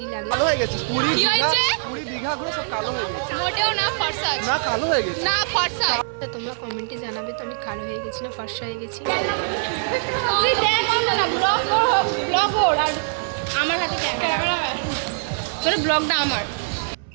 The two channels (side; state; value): left; silent; 61 dB below the other